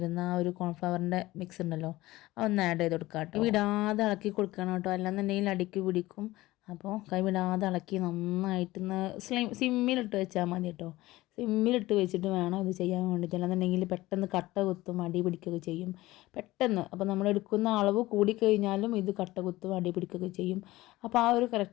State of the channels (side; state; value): right; quieter; 18.1 dB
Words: ആ ഒരു കോൺഫ്ലവറിൻ്റെ മിക്സ് ഉണ്ടല്ലോ, അതൊന്ന് ആഡ് ചെയ്ത് കൊടുക്കുക കേട്ടോ. വിടാതെ ഇളക്കി കൊടുക്കണം കേട്ടോ, അല്ലാന്നുണ്ടെങ്കിൽ അടിക്ക് പിടിക്കും. അപ്പോൾ കൈവിടാതെ ഇളക്കി നന്നായിട്ടൊന്ന് സിമ്മിലിട്ട് വെച്ചാൽ മതി കേട്ടോ. സിമ്മിലിട്ട് വെച്ചിട്ട് വേണം ഇത് ചെയ്യാൻ വേണ്ടിയിട്ട്. അല്ലാന്നുണ്ടെങ്കിൽ പെട്ടെന്ന് കട്ട കുത്തും, അടി പിടിക്കുകയൊക്കെ ചെയ്യും പെട്ടെന്ന്. അപ്പോൾ നമ്മൾ എടുക്കുന്ന അളവ് കൂടിക്കഴിഞ്ഞാലും ഇത് കട്ട കുത്തും, അടി പിടിക്കുകയൊക്കെ ചെയ്യും. അപ്പോൾ ആ ഒരു